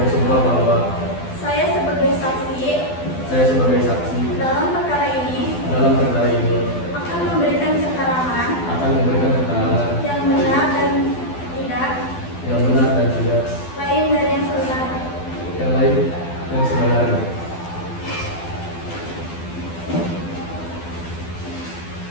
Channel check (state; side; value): late; right; 12 ms